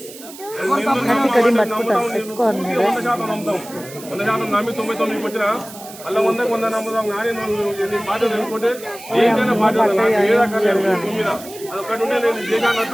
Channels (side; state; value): right; noise; hiss, 16 dB below the sound